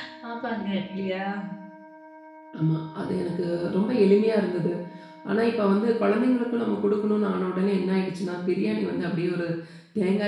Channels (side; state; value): both; identical; correlation 1.00